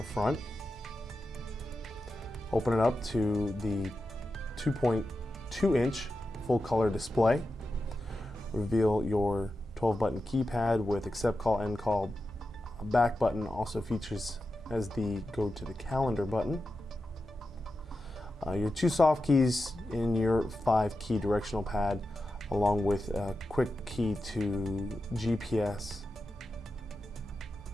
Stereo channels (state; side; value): normal; both; correlation 0.90